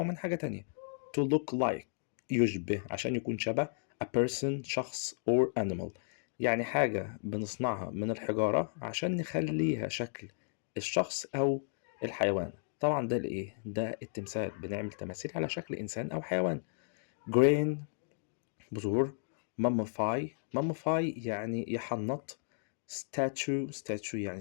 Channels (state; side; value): silent; right; digital silence